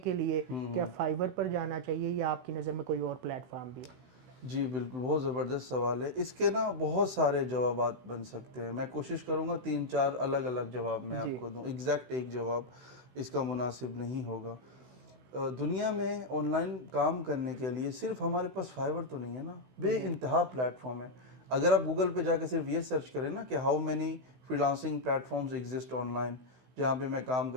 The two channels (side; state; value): left; late; 16 ms